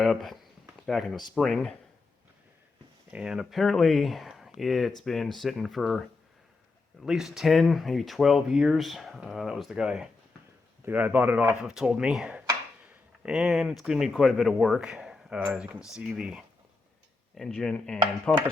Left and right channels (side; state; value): right; quieter; 3.7 dB